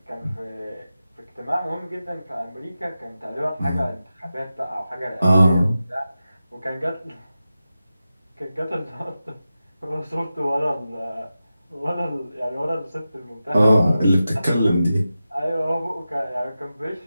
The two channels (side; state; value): both; inverted; correlation -0.93